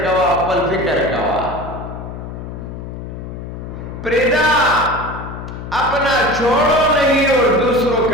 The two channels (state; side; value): noise; left; hum, 9 dB below the sound